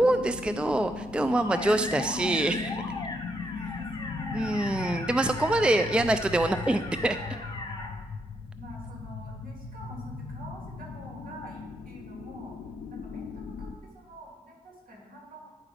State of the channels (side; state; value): both; normal; correlation 0.78